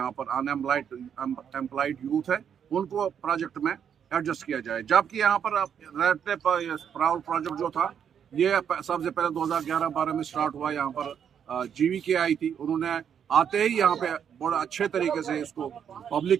पर अनएम्प्लॉयड यूथ है उनको प्रोजेक्ट में एडजस्ट किया जाए। जबकि यहाँ पर रहते प्राउड प्रोजेक्ट जो था, ये सबसे पहले 2011-12 में स्टार्ट हुआ। यहाँ पर जीवीके आई थी, उन्होंने आते ही यहाँ पे बड़ा अच्छे तरीके से इसको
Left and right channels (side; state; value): left; quieter; 8.2 dB